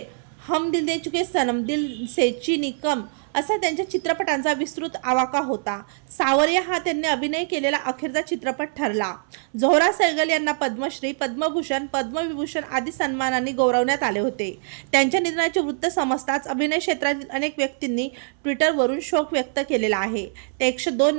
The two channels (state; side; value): silent; left; 61 dB below the other